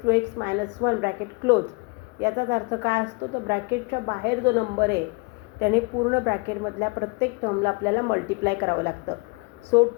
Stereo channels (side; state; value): right; quieter; 29.8 dB